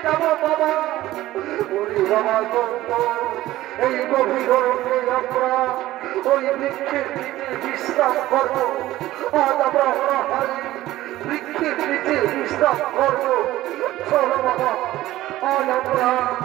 যাবো বাবা। ওরে বাবা এই গভীর রোদে আমরা ওই বৃক্ষের নিচে বিশ্রাম করবো। আজ আমরা অনাহারে বৃক্ষের নিচে বিশ্রাম করবো। চলো বাবা, আজ আমরা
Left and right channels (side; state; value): left; quieter; 15.7 dB